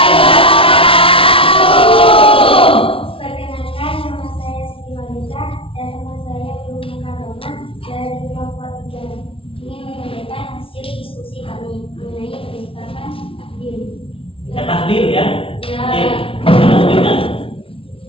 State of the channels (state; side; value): late; right; 0.26 ms